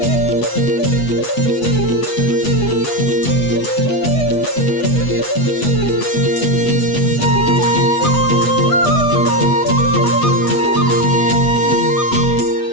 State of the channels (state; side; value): late; right; 8.2 ms